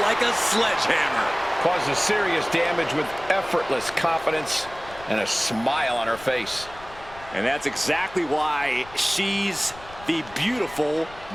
a sledgehammer. Causes serious damage with effortless confidence and a smile on her face. And that's exactly why she's the beautiful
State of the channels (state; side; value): noise; left; rumble, 19 dB below the sound